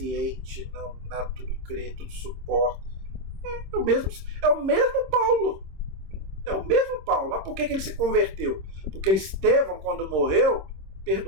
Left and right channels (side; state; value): left; late; 26 ms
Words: não tudo crê, tudo suporta. É o mesmo Paulo. É o mesmo Paulo. Mas por que ele se converteu? Porque Estevão, quando morreu,